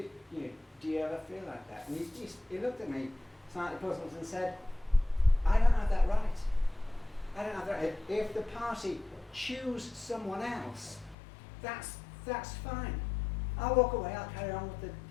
do you ever feel like that? And he looked at me slightly puzzled and said, I don't have that right. I don't have that right. If the party choose someone else, that's fine. I'll walk away, I'll carry on with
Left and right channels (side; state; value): right; drops out; at 11.2 s